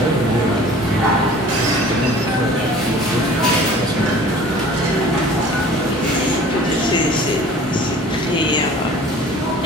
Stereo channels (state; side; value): normal; both; correlation 0.46